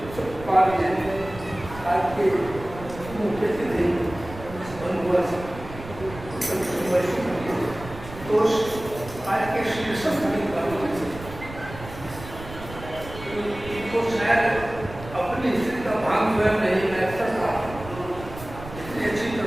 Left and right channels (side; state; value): right; noise; rumble, 14 dB below the sound